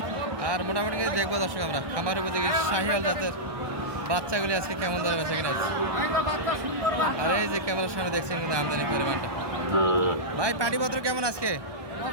আর মোটামুটি দেখবো দর্শক আমরা খামার উপযোগী শাহিওয়াল জাতের বাচ্চাগুলি আজকে কেমন দরে বেচা কিনা আছে। আর এই যে ক্যামেরার সামনে দেখছেন কিন্তু আমদানি পরিমাণটা। ভাই পাটিপত্র কেমন আজকে?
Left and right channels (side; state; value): left; late; 1.2 ms